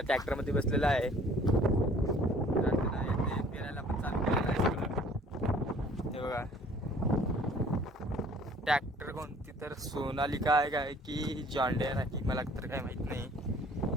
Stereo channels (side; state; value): both; normal; correlation 0.54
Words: ट्रॅक्टरमध्ये बसलेलं आहे. तर त्यांना ते पेरायला पण चालू केलेलं आहे सगळं. हे बघा ट्रॅक्टर कोणती तर सोनालिका आहे काय की जॉन डियर आहे मला तर काय माहित नाही.